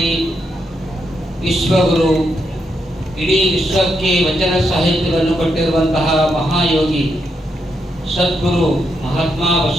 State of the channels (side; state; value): both; normal; correlation 0.80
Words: ವಿಶ್ವಗುರು ಇಡೀ ವಿಶ್ವಕ್ಕೆ ವಚನ ಸಾಹಿತ್ಯವನ್ನು ಕೊಟ್ಟಿರುವಂತಹ ಮಹಾಯೋಗಿ ಸದ್ಗುರು ಮಹಾತ್ಮ